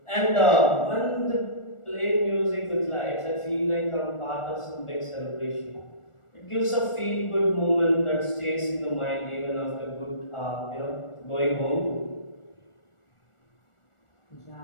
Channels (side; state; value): right; late; 1.4 ms